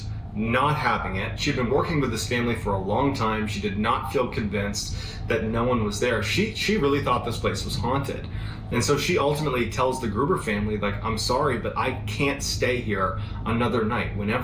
not having it. She'd been working with this family for a long time. She did not feel convinced that no one was there. She really thought this place was haunted. And so she ultimately tells the Gruber family, like, I'm sorry, but I can't stay here another night.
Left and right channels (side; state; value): both; identical; correlation 1.00